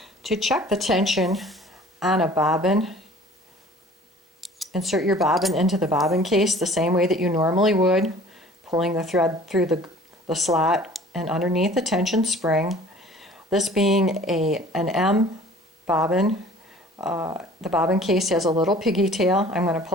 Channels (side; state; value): both; normal; correlation 0.48